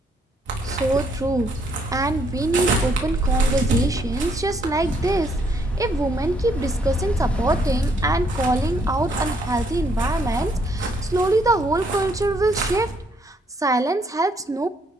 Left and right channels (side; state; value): both; normal; correlation 0.70